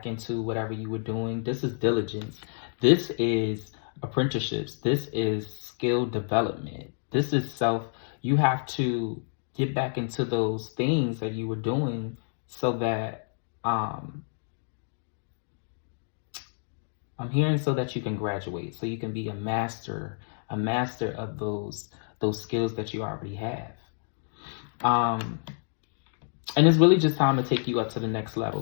into whatever you were doing. This is diligence. This is apprenticeships. This is skill development. This is self. You have to get back into those things that you were doing so that, I'm hearing, so that you can graduate, so you can be a master of those skills that you already have. And it's really just time to take you up to the next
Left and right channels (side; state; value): right; silent; digital silence